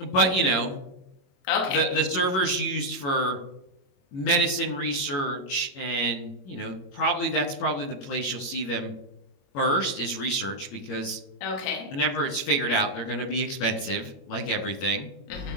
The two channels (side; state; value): right; late; 22 ms